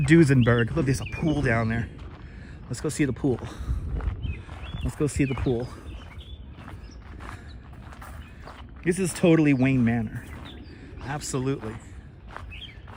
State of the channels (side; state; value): both; identical; correlation 1.00